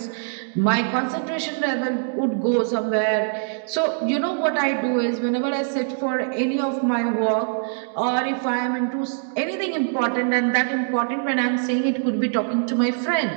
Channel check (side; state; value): left; silent; digital silence